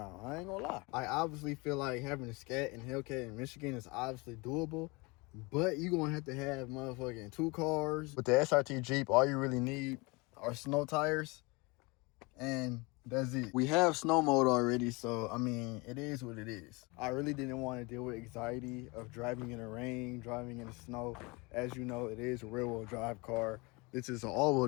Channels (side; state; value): right; quieter; 26.6 dB